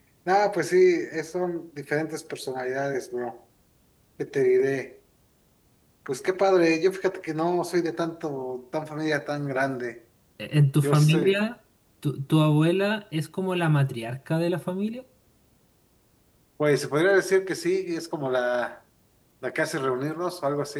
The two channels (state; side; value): identical; both; correlation 1.00